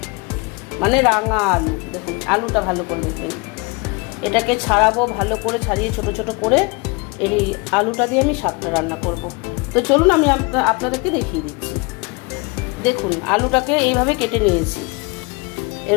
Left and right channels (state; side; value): quieter; right; 27.9 dB